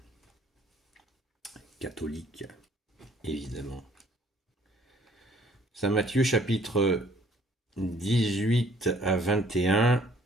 Catholique, évidemment. Saint Matthieu chapitre 18 à 21,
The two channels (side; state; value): both; normal; correlation 0.59